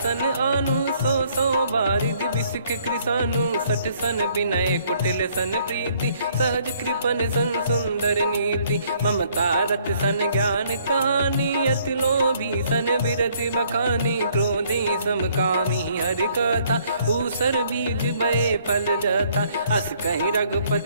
आनु 100 बारिद बिसिख कृसानु। 60 सन विनय कुटिल सन प्रीति सहज कृपन सन सुंदर नीति। ममता रत सन ज्ञान कहानी अति लोभी सन बिरति बखानी। क्रोधी समकामी हरि कथा ऊसर बीज बये फल जथा। अस कहीं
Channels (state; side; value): inverted; both; correlation -0.64